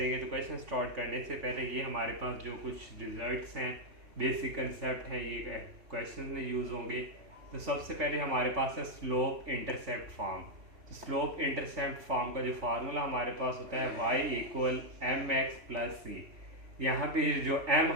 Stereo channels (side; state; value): left; late; 3.5 ms